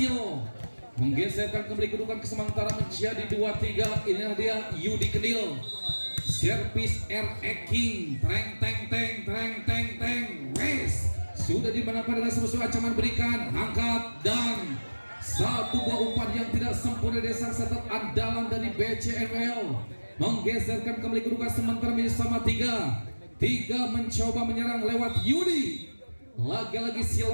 menggeserkan kembali kedudukan sementara menjadi 2-3. Inilah dia Yudi Kandil, servis RE King, treng wes sudah dimanapun dengan sebuah ancaman berikan, angkat dan satu buah umpan yang tidak sempurna dari sang setat andalan dari BCML menggeserkan kembali kedudukan sementara menjadi sama 3 mencoba menyerang lewat Yudi. Lagi-lagi si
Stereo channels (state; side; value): inverted; both; correlation -1.00